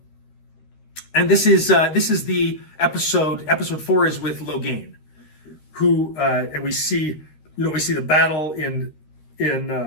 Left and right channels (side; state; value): right; late; 13 ms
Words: this is the episode 4 is with Logain, who and we see the battle in